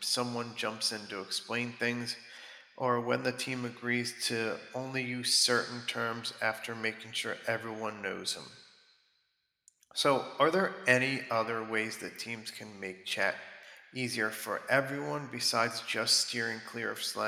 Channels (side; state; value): both; identical; correlation 1.00